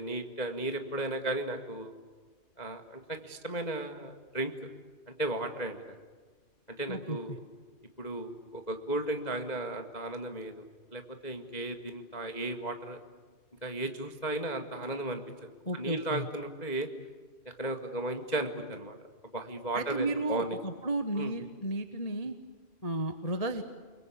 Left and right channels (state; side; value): late; right; 2.0 ms